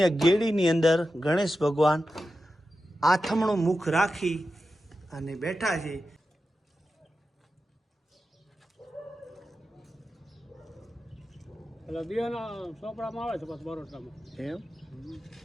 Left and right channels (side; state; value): both; normal; correlation 0.92